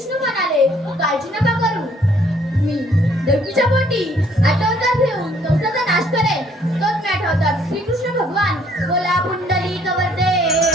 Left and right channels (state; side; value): normal; both; correlation 0.63